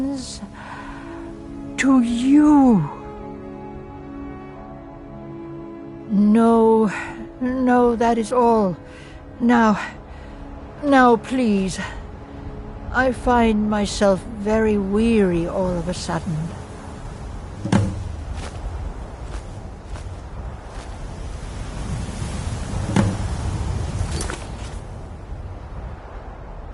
to you. No, that is all. Now, please. I find myself very weary all of a sudden.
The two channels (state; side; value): identical; both; correlation 1.00